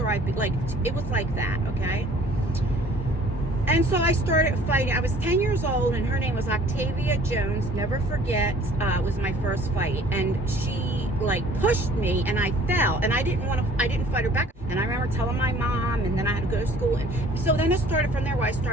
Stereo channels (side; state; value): both; normal; correlation 0.53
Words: it was like that, okay? And so I started fighting. I was 10 years old, and her name was Octavia Jones. Never forget, it was my first fight. And she, like, pushed me, and I fell. And I didn't fight her back. And I remember telling my mom, and then I had to go to school. And so then it started from there where I